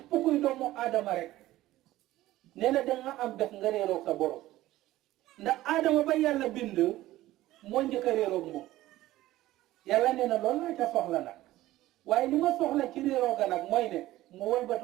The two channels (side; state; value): left; quieter; 15.9 dB